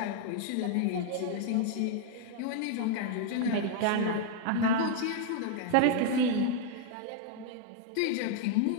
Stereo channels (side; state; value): both; different; correlation 0.00